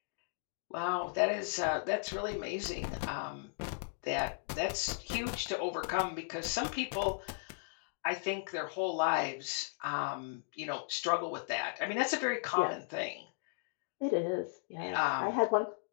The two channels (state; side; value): silent; right; digital silence